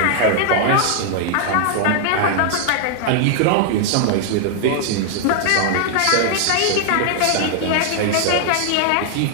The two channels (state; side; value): different; both; correlation 0.00